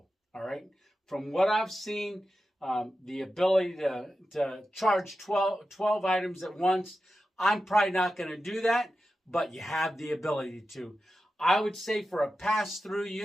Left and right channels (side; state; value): both; normal; correlation 0.92